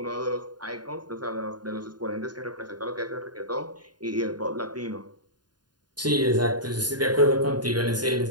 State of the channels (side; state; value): left; late; 0.70 ms